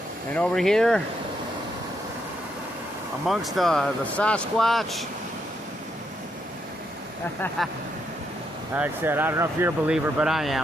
And over here, amongst the Sasquatch. Like I said, I don't know if you're a believer, but I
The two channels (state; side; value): normal; both; correlation 0.78